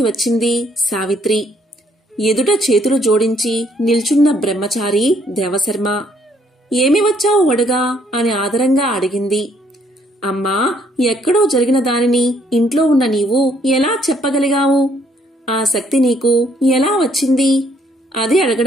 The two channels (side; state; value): both; normal; correlation 0.67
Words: వచ్చింది సావిత్రి. ఎదుట చేతులు జోడించి నిల్చున్న బ్రహ్మచారి దేవశర్మ. ఏమి వచ్చావు వడుగా అని ఆదరంగా అడిగింది. అమ్మా, ఎక్కడో జరిగిన దానిని ఇంట్లో ఉన్న నీవు ఎలా చెప్పగలిగావు? ఆ శక్తి నీకు ఎలా వచ్చింది? అది